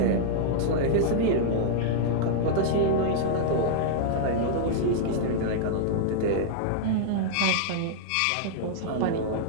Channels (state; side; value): different; both; correlation -0.02